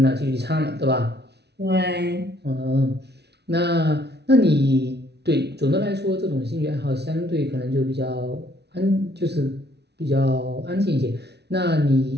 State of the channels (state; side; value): late; left; 0.49 ms